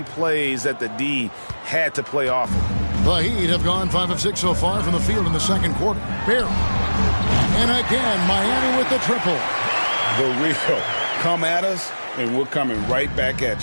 plays that the D had to play off him. The Heat have gone 5 of 6 so far from the field in the second quarter. Barry. And again, Miami with the triple. The real. Come at us, and we're coming right back at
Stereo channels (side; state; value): both; inverted; correlation -1.00